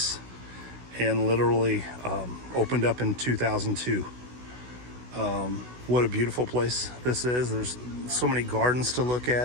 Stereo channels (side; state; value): left; late; 16 ms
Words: and literally opened up in 2002. What a beautiful place this is. There's so many gardens to look